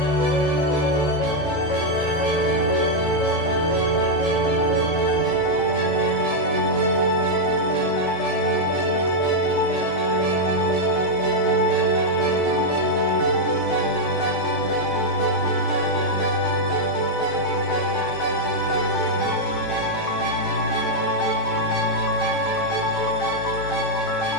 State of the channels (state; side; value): late; right; 14 ms